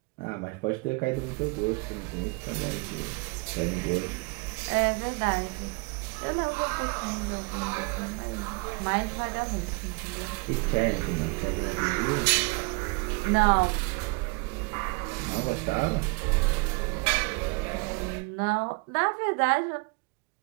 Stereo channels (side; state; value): left; quieter; 30.0 dB